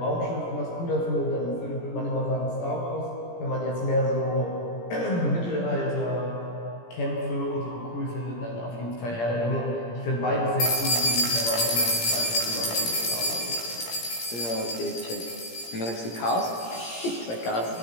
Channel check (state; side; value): late; right; 17 ms